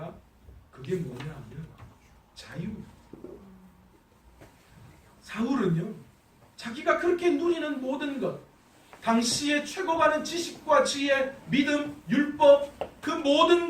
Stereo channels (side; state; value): both; identical; correlation 1.00